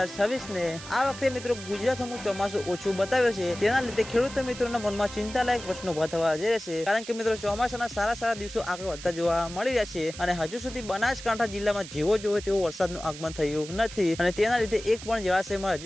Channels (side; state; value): right; noise; hiss, 13 dB below the sound